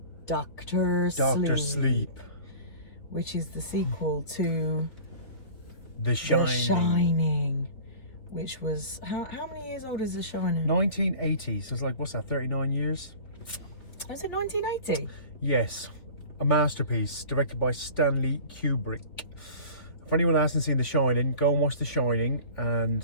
Doctor Sleep. Which is the sequel to The Shining. The Shining. Which was... How many years old is The Shining? 1980. So it's like, what's that, 39 years? Was it 1980? Yes. A masterpiece directed by Stanley Kubrick. For anyone that hasn't seen The Shining, go and watch The Shining. And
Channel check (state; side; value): late; right; 3.9 ms